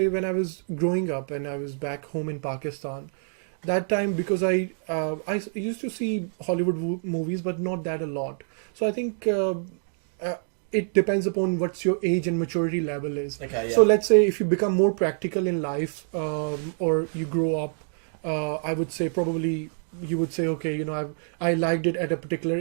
when I was growing up and I was back home in Pakistan, that time because I used to see Hollywood movies, but not that a lot. So I think it depends upon what's your age and maturity level is. okay, yeah. So let's say if you become more practical in life, or you grow up, I would say probably you would say, okay, I liked it at a particular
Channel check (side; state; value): left; silent; 59 dB below the other